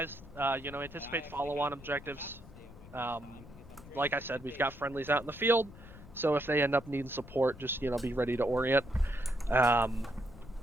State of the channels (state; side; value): noise; left; rumble, 18 dB below the sound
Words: anticipate follow-on objectives. Like I said, we've got friendlies out in the field, so if they end up needing support, just, be ready to orient.